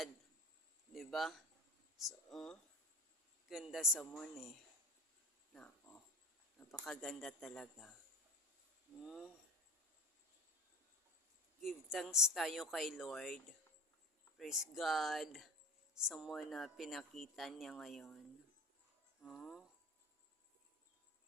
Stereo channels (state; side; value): normal; both; correlation 0.28